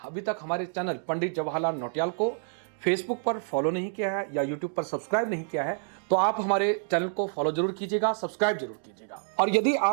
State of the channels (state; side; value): silent; left; digital silence